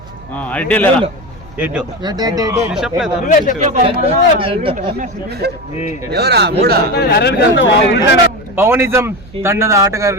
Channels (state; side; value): noise; right; hum, 21 dB below the sound